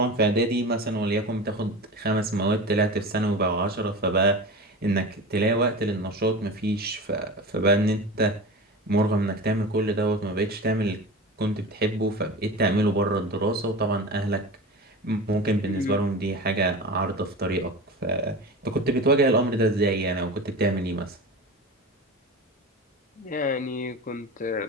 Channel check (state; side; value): normal; both; correlation 0.31